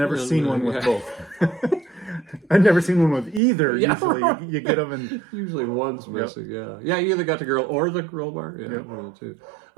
seen one with both. I've never seen one with either. Yeah. Usually you get them and... Usually one's missing, yeah. Yeah, you either got the grill or the roll bar. Yeah, one of the two.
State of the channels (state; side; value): drops out; left; at 3.4 s